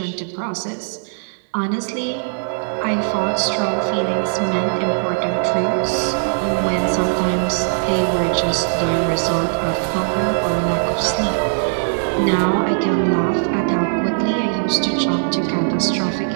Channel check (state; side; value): silent; left; 65 dB below the other